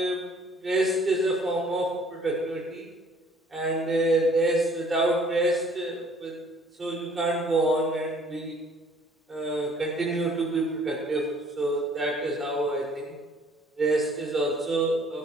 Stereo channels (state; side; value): normal; both; correlation 0.57